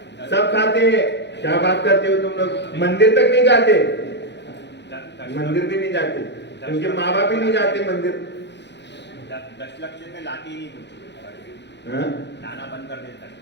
सब खाते हैं। क्या बात करते हो तुम लोग, मंदिर तक नहीं जाते, मंदिर भी नहीं जाते, उनके माँ बाप भी नहीं जाते मंदिर। 10 लक्ष में लाती ही नहीं, लाना बंद कर देता,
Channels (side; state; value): right; late; 0.51 ms